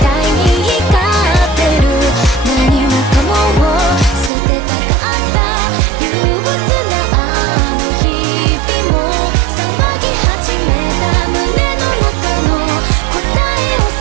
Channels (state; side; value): drops out; left; at 4.3 s